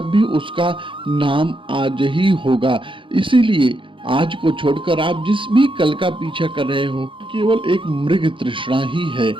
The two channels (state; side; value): late; left; 0.25 ms